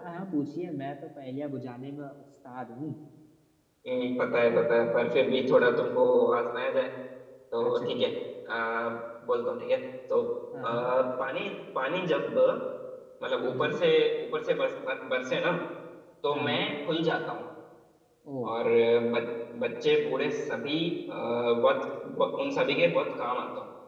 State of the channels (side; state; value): both; identical; correlation 1.00